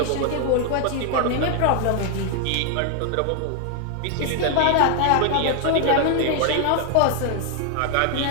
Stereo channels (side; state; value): both; different; correlation 0.00